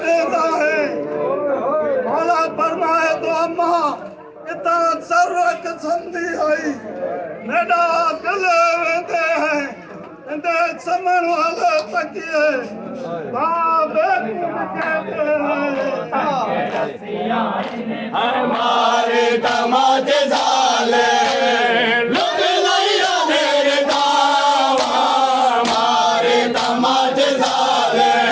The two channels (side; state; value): both; identical; correlation 1.00